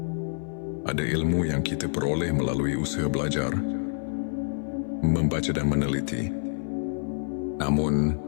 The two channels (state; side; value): silent; right; 58 dB below the other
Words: Ada ilmu yang kita peroleh melalui usaha belajar, membaca dan meneliti. Namun,